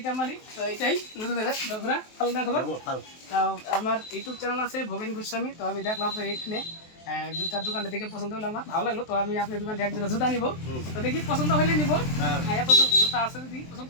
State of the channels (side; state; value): right; late; 23 ms